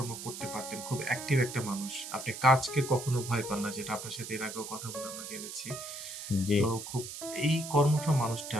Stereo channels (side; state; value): right; noise; hiss, 9 dB below the sound